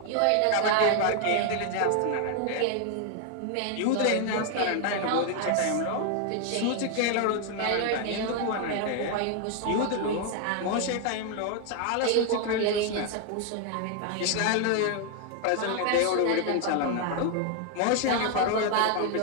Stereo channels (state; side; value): different; both; correlation 0.00